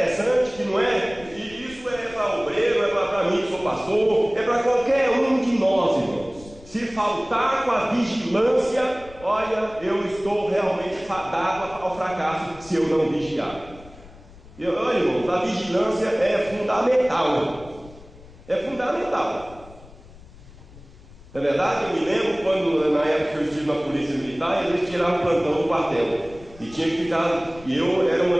que não é, e isso é para obreiro, é para mim que sou pastor, é para qualquer um de nós, irmãos. Se faltar com a vigilância, olha, eu estou realmente fadado ao fracasso se eu não vigiar. Olha, irmãos, a vigilância é fundamental. É fundamental. É verdade? Eu me lembro quando, na época que eu estive na polícia militar, eles tiravam o plantão do quartel. E tinha que ficar, e eu era uma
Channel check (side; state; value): left; noise; rumble, 20 dB below the sound